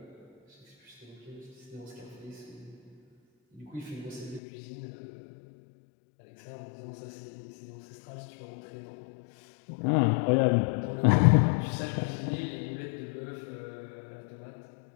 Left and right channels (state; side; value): drops out; right; at 4.4 s